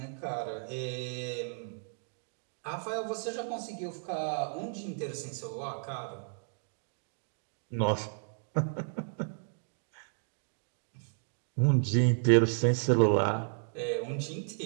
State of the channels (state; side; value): silent; left; digital silence